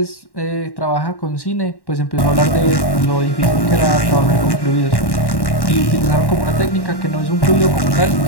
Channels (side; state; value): right; late; 1.1 ms